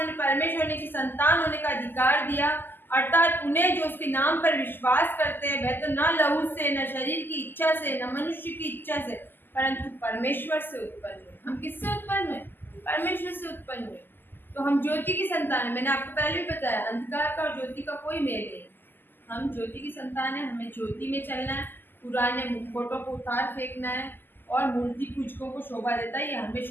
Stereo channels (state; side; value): late; right; 0.093 ms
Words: परमेश्वर की संतान होने का अधिकार दिया, अर्थात उन्हें जो उसके नाम पर विश्वास करते हैं, वह तो न लहू से, न शरीर की इच्छा से, न मनुष्य की इच्छा से, परंतु परमेश्वर से उत्पन्न हुए। हम किससे उत्पन्न हुए? परमेश्वर से उत्पन्न हुए। तो हम ज्योति की संतान है। मैंने आपको पहले भी बताया, अंधकार का और ज्योति का कोई मेल नहीं। हम ज्योति की संतान है, हमें ज्योति में चलना है, पुराने मुखौटों को उतार फेंकना है और मूर्ति पूजकों को शोभा देता है, ये हमें